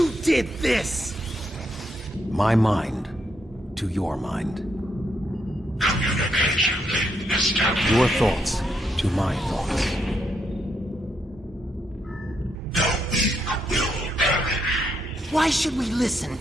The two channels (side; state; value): both; normal; correlation 0.78